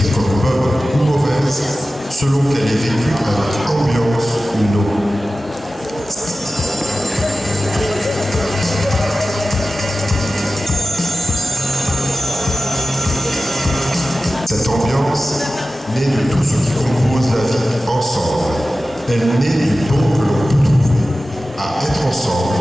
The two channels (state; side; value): normal; both; correlation 0.95